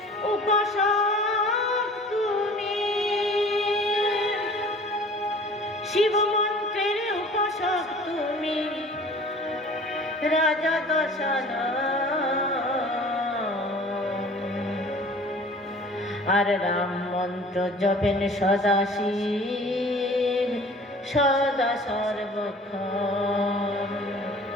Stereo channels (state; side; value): normal; both; correlation 0.47